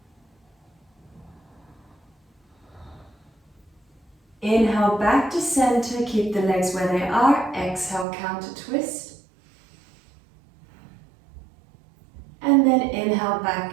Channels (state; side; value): drops out; left; at 8.1 s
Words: Inhale back to center, keep the legs where they are. Exhale, counter twist. And then inhale